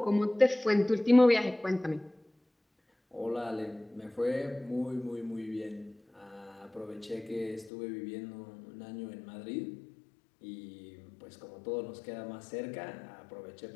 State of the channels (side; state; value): right; drops out; at 7.7 s